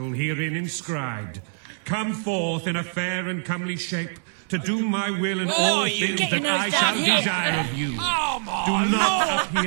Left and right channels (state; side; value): silent; left; digital silence